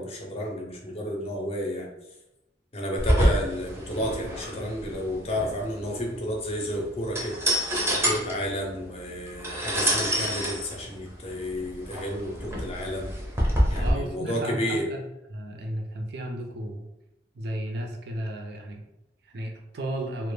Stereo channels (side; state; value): both; normal; correlation 0.56